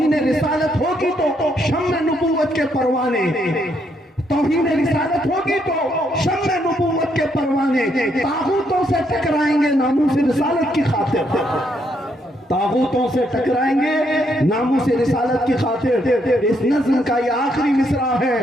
رسالت ہوگی تو شمع نبوت کے پروانے, توہین رسالت ہوگی تو شمع نبوت کے پروانے طاغوتوں سے ٹکرائیں گے ناموس رسالت کی خاطر. طاغوتوں سے ٹکرائیں گے ناموس رسالت کی خاطر. اس نظم کا یہ آخری مصرع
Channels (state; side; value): normal; both; correlation 0.74